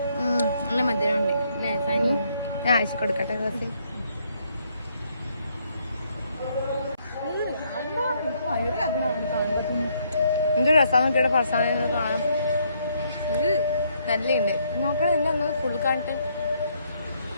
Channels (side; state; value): both; inverted; correlation -0.70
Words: നല്ല മധുരമുണ്ട് അല്ലേ സാനി? ഞാൻ അയച്ചു കൊടുക്കട്ടെ. റസി എന്ത് രസം നോക്കിയുടെ ഫർസാന കാണാം. നല്ലുണ്ട്. നോക്കണം എന്താ ഫുൾ കാണിട്ട്